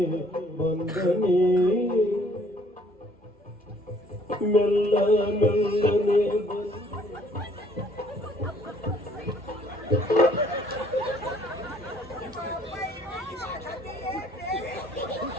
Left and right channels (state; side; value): normal; both; correlation 0.60